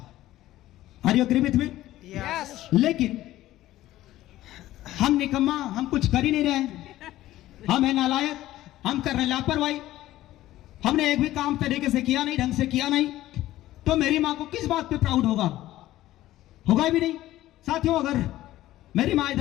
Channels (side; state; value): right; quieter; 15.0 dB